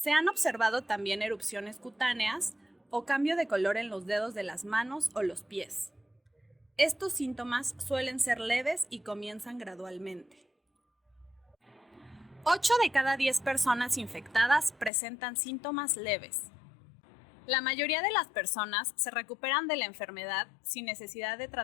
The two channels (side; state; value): right; drops out; at 14.9 s